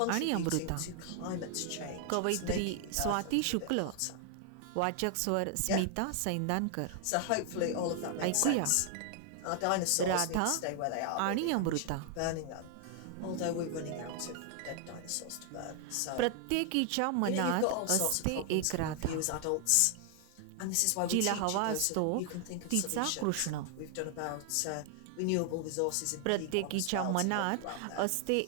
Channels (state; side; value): different; both; correlation 0.00